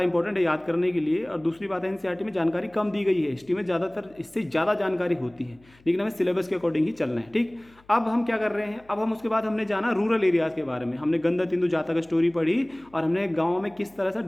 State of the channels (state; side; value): noise; left; hum, 29 dB below the sound